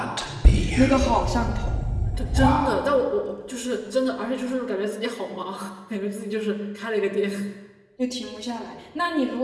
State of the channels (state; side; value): identical; both; correlation 1.00